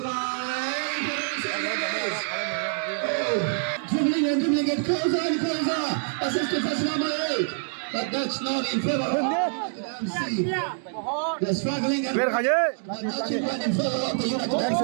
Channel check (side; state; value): left; silent; digital silence